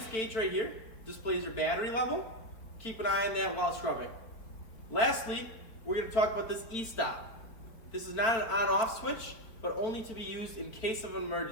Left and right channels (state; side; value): late; right; 4.3 ms